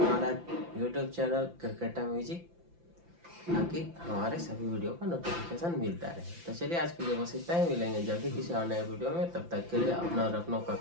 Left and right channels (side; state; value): left; late; 5.9 ms